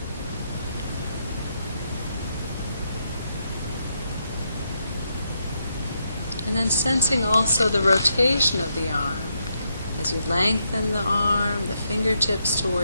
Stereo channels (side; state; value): both; inverted; correlation -0.80